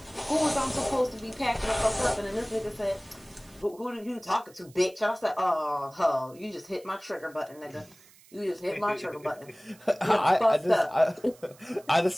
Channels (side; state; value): right; noise; hiss, 26 dB below the sound